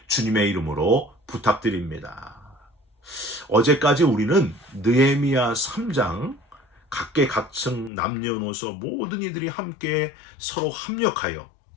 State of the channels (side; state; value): right; drops out; at 7.9 s